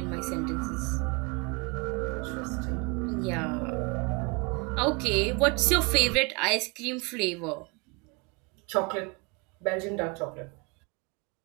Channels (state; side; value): quieter; left; 29.2 dB